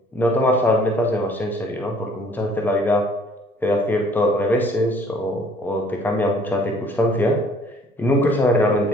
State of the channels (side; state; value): both; normal; correlation 0.58